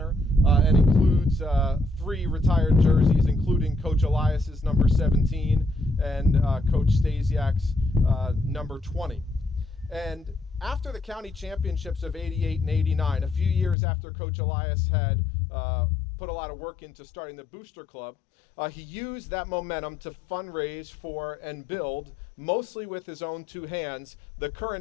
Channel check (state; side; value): drops out; right; at 13.8 s